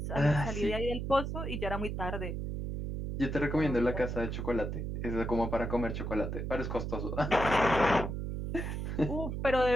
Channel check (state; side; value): noise; right; hum, 3 dB below the sound